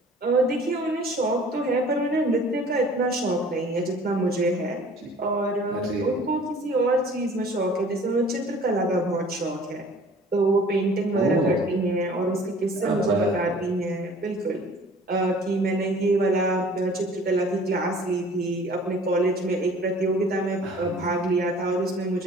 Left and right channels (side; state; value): both; normal; correlation 0.49